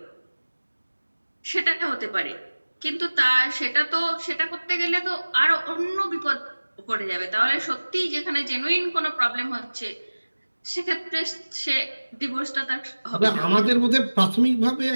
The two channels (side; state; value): both; inverted; correlation -1.00